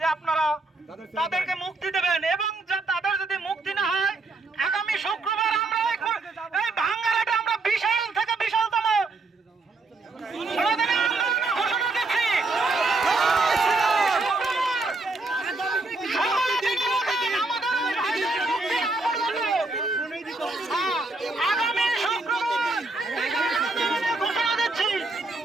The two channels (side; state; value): left; quieter; 3.4 dB